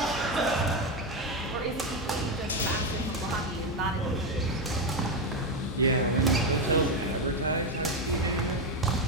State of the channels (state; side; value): normal; both; correlation 0.10